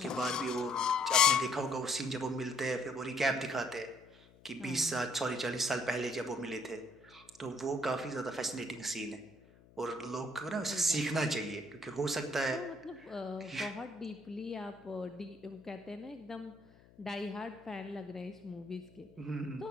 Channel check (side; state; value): left; noise; hum, 25 dB below the sound